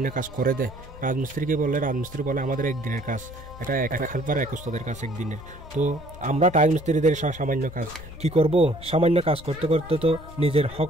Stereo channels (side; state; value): both; normal; correlation 0.58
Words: কাজ করে দে, রাজমিস্ত্রিকে বললে রাজমিস্ত্রি বলে আমাদের একদিনের কাজ, এটা এক হেল্পার এক ওস্তাদের কাজ একদিনের। তো আমরা রাজমিস্ত্রিদের সামান্য কাজ কি করব, সামান্য কাজ করতে করতে তো নিজের